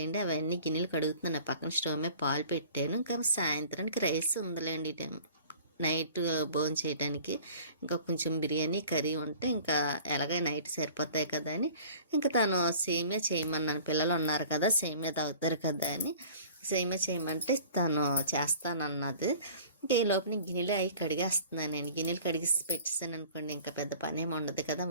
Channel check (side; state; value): both; inverted; correlation -0.46